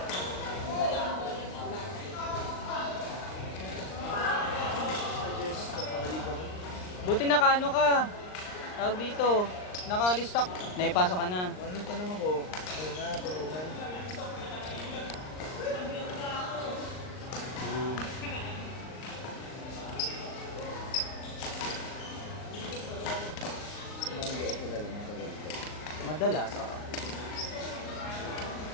Buti nakaano ka. Tawag dito. Naka-listak. Naipasok ka na. Anong tanong ako? Ano nga, tulungan. Sumanggi ako dala mga tagal ko. Madalas, oo.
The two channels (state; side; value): late; right; 39 ms